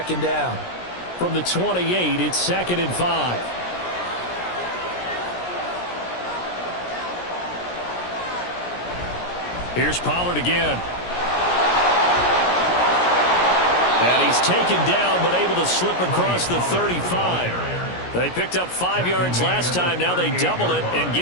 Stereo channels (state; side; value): late; right; 17 ms